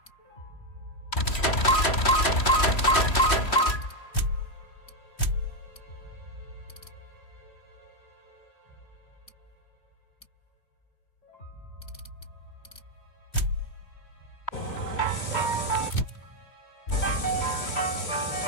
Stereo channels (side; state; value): right; late; 3.1 ms